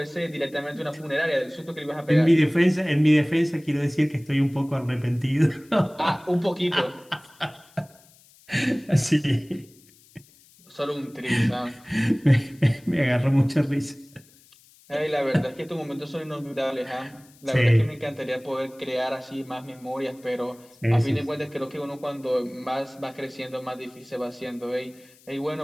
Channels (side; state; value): left; noise; hiss, 27 dB below the sound